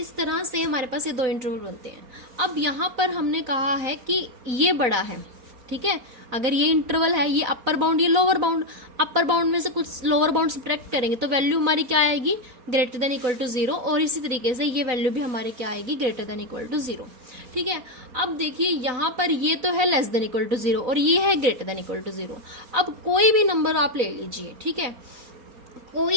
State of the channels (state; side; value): late; left; 4.0 ms